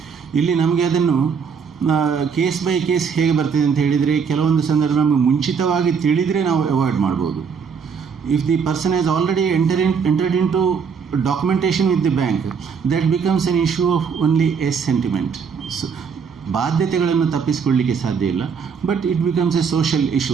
ಇಲ್ಲಿ ನಮಗೆ ಅದನ್ನು ಕೇಸ್ ಬೈ ಕೇಸ್ ಹೇಗೆ ಬರ್ತದೆ ಅಂತ ಹೇಳಿದರೆ, ಕೆಲವೊಂದು ಸಂದರ್ಭ ನಮಗೆ ಮುಂಚಿತವಾಗಿ ತಿಳಿದರೆ ನಾವು ಅವಾಯ್ಡ್ ಮಾಡ್ಬೋದು. If the person has already entered in to documentation with the bank, that becomes an issue of only a sentiment. So ಬಾಧ್ಯತೆಗಳನ್ನು ತಪ್ಪಿಸಿಕೊಳ್ಳಲಿಕ್ಕೆ ಸಾಧ್ಯ ಇಲ್ಲ, but it becomes a social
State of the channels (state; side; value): quieter; left; 6.2 dB